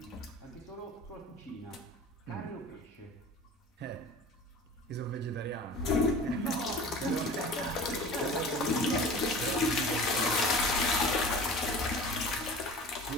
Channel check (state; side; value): normal; both; correlation 0.39